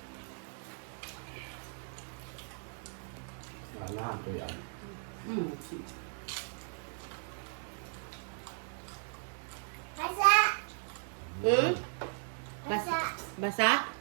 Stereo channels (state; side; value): silent; left; 53 dB below the other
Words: Wala to yan. Basa. Hmm? Basa. Basa?